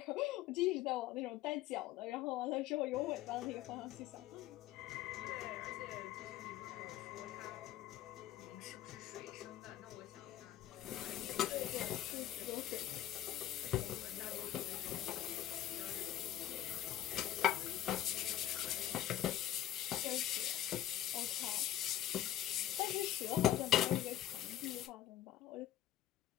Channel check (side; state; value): right; quieter; 12.5 dB